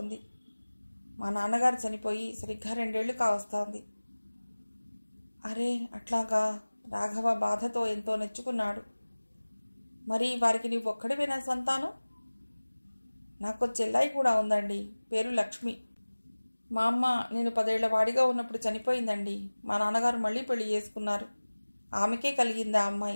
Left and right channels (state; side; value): inverted; both; correlation -1.00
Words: మా నాన్నగారు చనిపోయి సరిగ్గా 2 ఏళ్లు కావస్తోంది. అరే అట్లాగా? రాఘవ బాధతో ఎంతో నెచ్చుకున్నాడు. మరి వారికి నీవు ఒక్కడివేనా సంతానం? నాకు చెల్లాయి కూడా ఉందండి, పేరు లక్ష్మి. మా అమ్మ నేను 10 ఏళ్ల వాడిగా ఉన్నప్పుడు చనిపోయిందండి. మా నాన్నగారు మళ్ళీ పెళ్లి చేసుకున్నారు. ఆమెకే కలిగింది ఆ